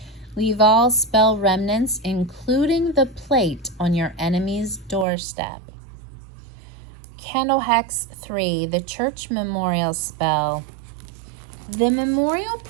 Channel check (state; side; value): drops out; left; at 5.1 s